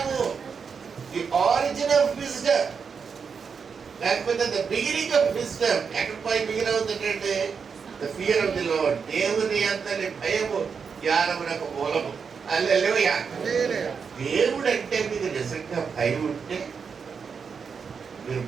The origin of wisdom. లేకపోతే ద బిగినింగ్ ఆఫ్ విజ్డమ్ ఎక్కడ పోయి బిగిన్ అవుతుందంటే the fear of the lord. దేవుని అంతని భయము జ్ఞానమునకు మూలము. హల్లెలూయా. దేవుడు అంటే మీకు నిజంగా భయం ఉంటే మీరు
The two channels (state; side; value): quieter; left; 6.0 dB